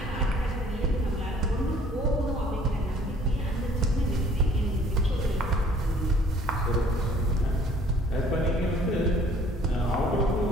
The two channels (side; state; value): both; normal; correlation 0.56